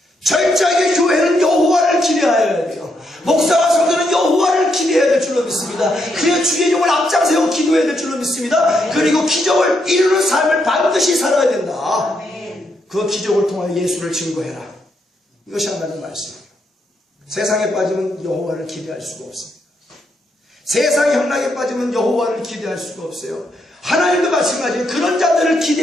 철저하게 교회는 여호와를 기대하여야 돼요. 목사와 성도는 여호와를 기대해야 될 줄로 믿습니다. 그래야 주의 종을 앞장세우고 기도해야 될 줄로 믿습니다. 그리고 기적을 이루는 삶을 반드시 살아야 된다. 그 기적을 통하여 예수를 증거해라. 이것이 하나님의 말씀이에요. 세상에 빠지면 여호와를 기대할 수가 없습니다. 세상의 향락에 빠지면 여호와를 기대할 수가 없어요. 하나님도 마찬가지예요. 그런 자들을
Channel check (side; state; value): both; normal; correlation 0.79